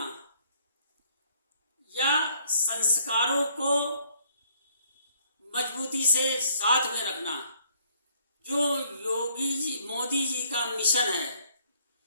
या संस्कारों को मजबूती से साथ में रखना, जो मोदी जी का मिशन है,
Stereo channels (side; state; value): both; inverted; correlation -0.64